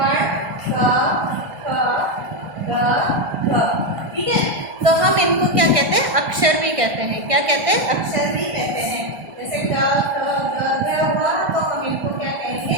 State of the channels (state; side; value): late; left; 1.6 ms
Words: क ख ग घ, ठीक है। तो हम इनको क्या कहते हैं? अक्षर भी कहते हैं। क्या कहते हैं? अक्षर भी कहते हैं। जैसे क ख ग घ हुआ तो हम इनको क्या कहेंगे?